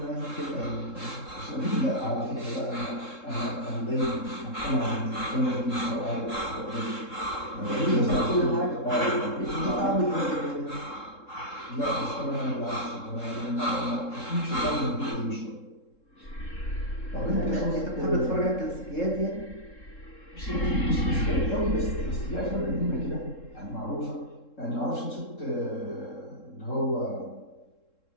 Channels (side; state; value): right; late; 3.7 ms